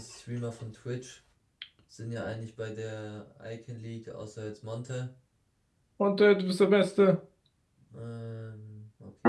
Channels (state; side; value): identical; both; correlation 1.00